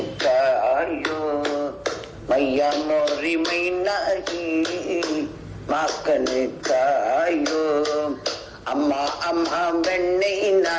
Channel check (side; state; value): both; identical; correlation 1.00